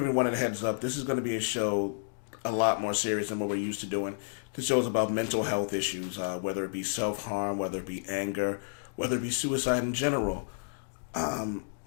everyone a heads up. This is going to be a show a lot more serious than what we're used to doing. This show is about mental health issues, whether it be self-harm, whether it be anger, whether it be suicide in general. But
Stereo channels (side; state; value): right; silent; digital silence